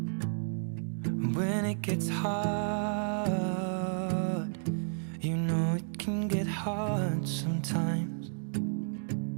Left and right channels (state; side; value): silent; left; digital silence